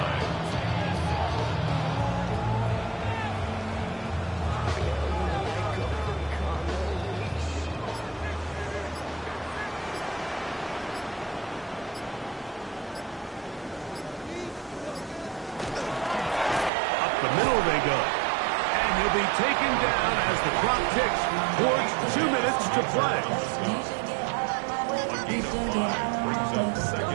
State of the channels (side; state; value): left; drops out; at 16.7 s